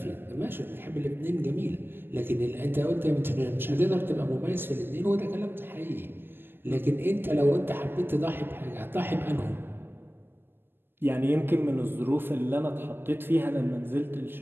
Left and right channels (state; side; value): late; left; 0.10 ms